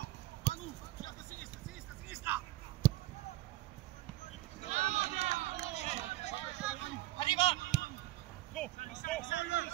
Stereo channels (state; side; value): quieter; left; 17.1 dB